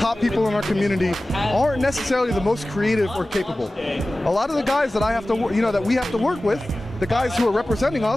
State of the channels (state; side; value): normal; both; correlation 0.96